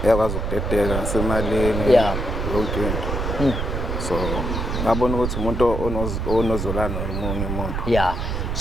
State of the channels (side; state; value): right; noise; rumble, 2 dB below the sound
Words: Uyakwazi ukudedela nasemalini yonke into. So ngabona ukuthi umuntu onozolana nomunye umuntu. Yeah.